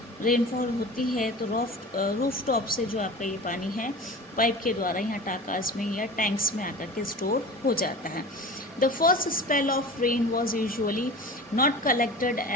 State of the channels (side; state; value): both; normal; correlation 0.35